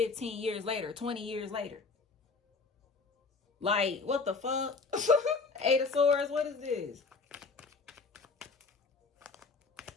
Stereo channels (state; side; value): quieter; right; 4.4 dB